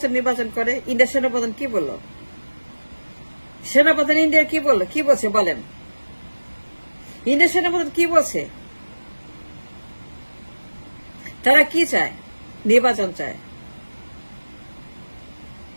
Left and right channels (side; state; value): both; inverted; correlation -1.00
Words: করে। ইন্ডিয়ার সেনাপ্রধান কি বলল? সেনাপ্রধান ইন্ডিয়ার কি বলল? কি বলছে বলেন? ইন্ডিয়ার সেনাপ্রধান কি বলছে? তারা কি চায়? নির্বাচন চায়,